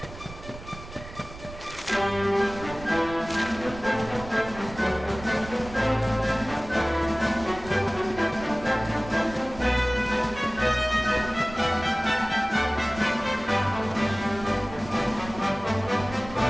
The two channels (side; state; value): right; noise; rumble, 15 dB below the sound